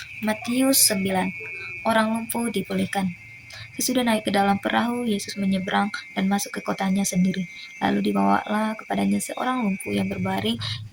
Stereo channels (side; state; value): both; identical; correlation 1.00